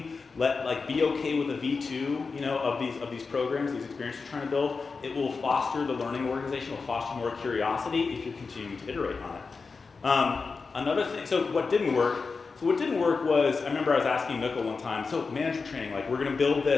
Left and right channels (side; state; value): right; quieter; 4.6 dB